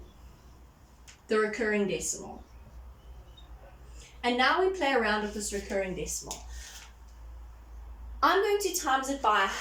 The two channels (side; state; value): both; identical; correlation 1.00